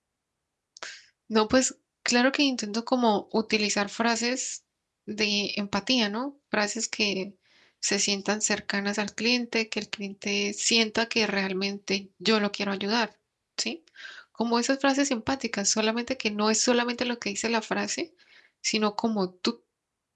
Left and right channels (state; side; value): identical; both; correlation 1.00